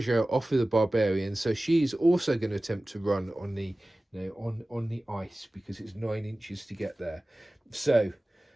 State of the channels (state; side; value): normal; both; correlation 0.97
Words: off of the barbarians. So she's also going to attempt to run on the on the ice, because it's 9 inches to get there. So